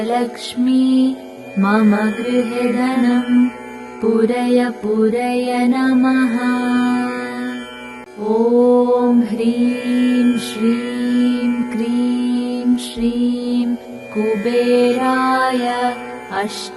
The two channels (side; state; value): both; identical; correlation 1.00